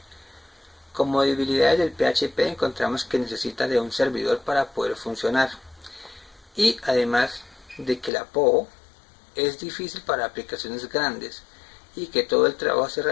Como debilidades del PHP encontramos que necesita de un servidor para poder funcionar y además de que la POO es difícil para aplicaciones grandes y que todo el trabajo se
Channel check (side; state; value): right; drops out; at 8.1 s